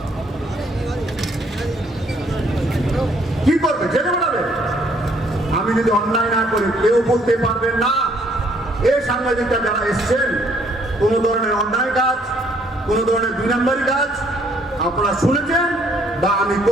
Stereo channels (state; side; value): normal; both; correlation 0.65